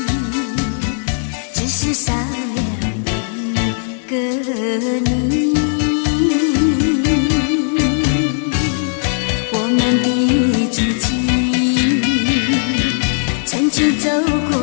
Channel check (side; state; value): right; silent; digital silence